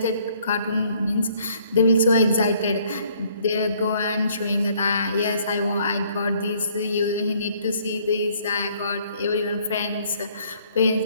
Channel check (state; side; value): inverted; both; correlation -0.63